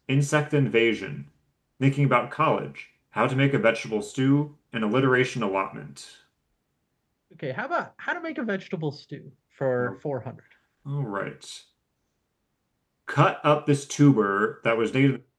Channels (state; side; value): identical; both; correlation 1.00